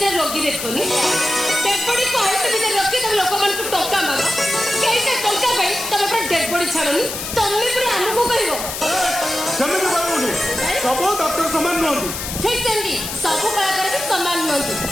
रोगी देखोनी डेड बॉडी को आइस भीतर रखी तमे लोक मन को टोका मागो केइसे टोका भाई तमे पर डेड बॉडी छाड़ोनी तमे पर हमको कहिवो जमे के बाबूनी सब डॉक्टर समान नहंती ठीक सेंदी सब कलाकार के समान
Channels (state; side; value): noise; left; hiss, 6 dB below the sound